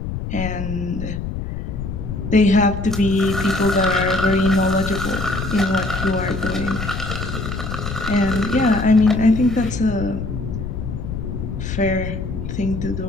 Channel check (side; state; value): left; noise; rumble, 5 dB below the sound